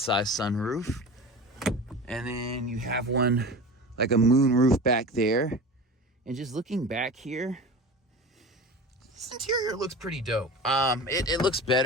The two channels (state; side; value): normal; both; correlation 0.33